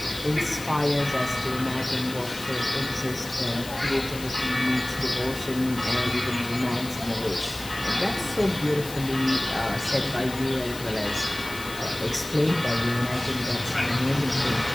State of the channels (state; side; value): noise; left; hiss, 13 dB below the sound